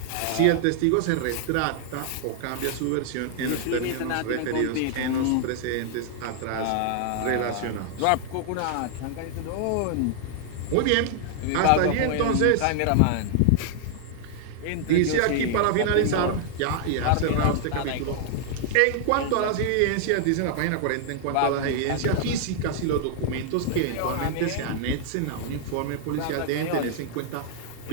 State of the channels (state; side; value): different; both; correlation -0.01